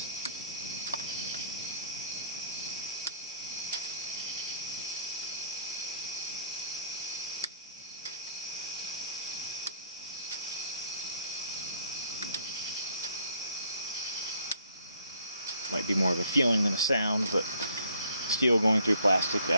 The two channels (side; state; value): both; inverted; correlation -0.65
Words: Might be more of a feeling than a sound, but steel going through plastic,